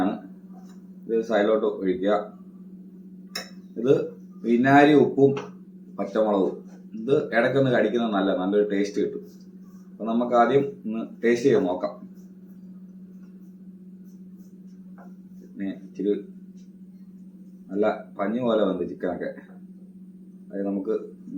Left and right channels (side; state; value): both; identical; correlation 1.00